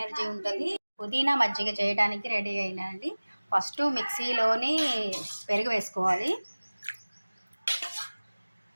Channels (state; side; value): inverted; both; correlation -1.00